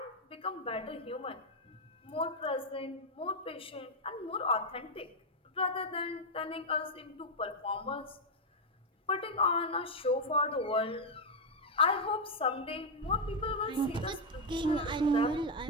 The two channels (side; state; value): both; normal; correlation 0.02